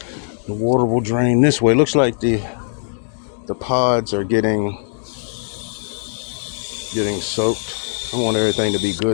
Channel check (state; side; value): silent; right; digital silence